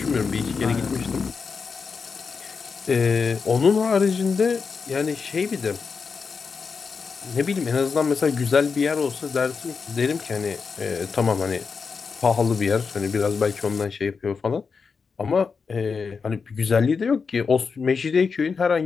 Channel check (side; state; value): right; quieter; 5.3 dB